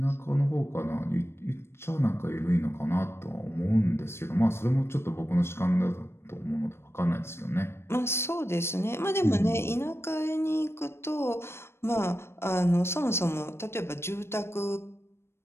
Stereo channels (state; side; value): late; right; 0.12 ms